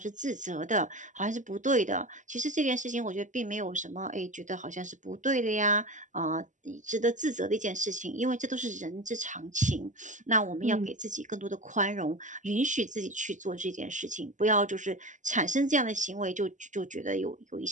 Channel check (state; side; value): late; left; 0.36 ms